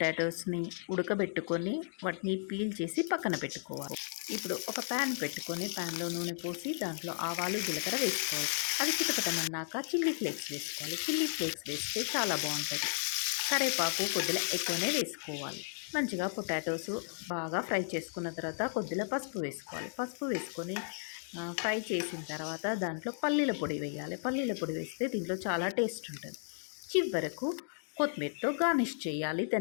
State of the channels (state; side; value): silent; right; digital silence